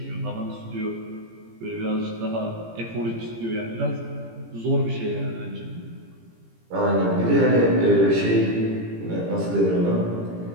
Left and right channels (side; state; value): left; late; 17 ms